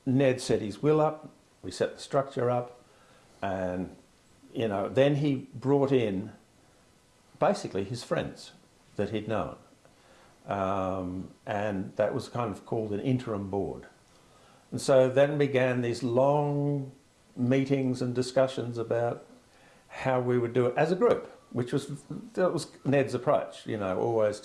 Ned set his will up, we set the structure up, and then he brought in basically his friends that he'd known. And that was kind of called an interim board. And so then began these long meetings and discussions about how we would do it as a group, that was Ned's approach, always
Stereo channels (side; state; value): both; identical; correlation 1.00